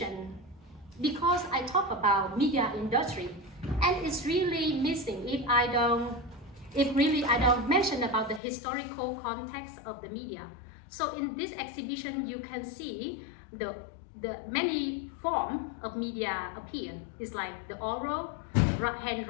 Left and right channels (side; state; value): right; drops out; at 8.4 s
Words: because I talk about media industry, and it's really missing if I don't mention about the historical context of the media. So in this exhibition, you can see the the many form of media appear. It's like the oral,